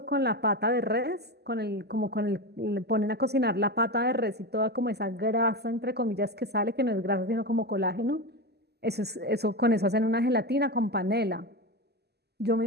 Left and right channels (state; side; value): late; left; 0.47 ms